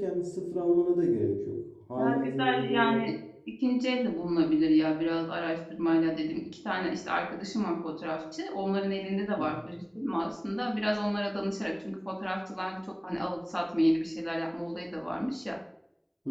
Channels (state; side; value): identical; both; correlation 1.00